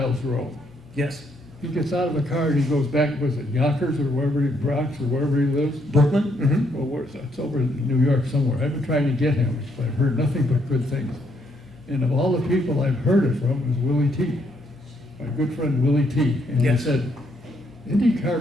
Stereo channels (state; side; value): normal; both; correlation 0.73